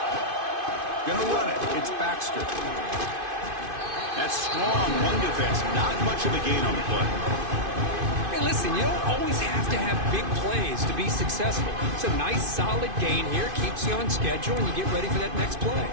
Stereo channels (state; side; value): late; left; 2.5 ms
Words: Gonna run it. It's Baxter. That's strong run defense. Not much of a gain on the play. Hey, listen, you don't always have to have big plays to be successful. It's a nice, solid gain here. Keeps you on schedule, and you get ready for that next play.